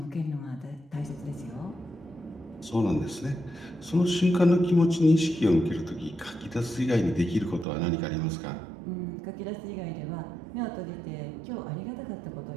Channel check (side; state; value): left; drops out; at 7.7 s